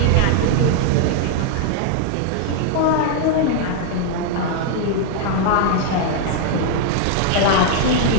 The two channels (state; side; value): different; both; correlation -0.01